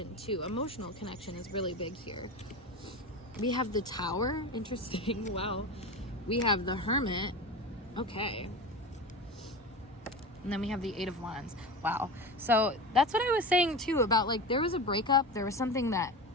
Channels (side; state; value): both; normal; correlation 0.27